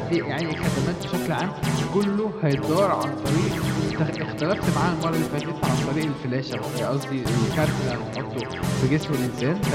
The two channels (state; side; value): identical; both; correlation 1.00